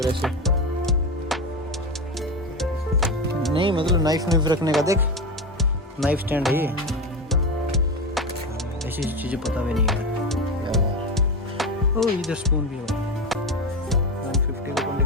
ऐसे नहीं, मतलब नाइफ रखने का। देख नाइफ स्टैंड है ये। ऐसी चीज़ें पता भी नहीं है। ओ इधर स्पून भी है 150 को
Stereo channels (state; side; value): normal; both; correlation 0.19